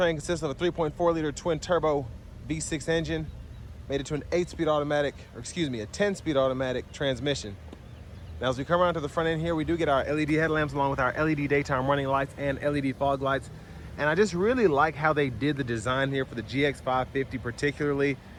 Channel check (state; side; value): identical; both; correlation 1.00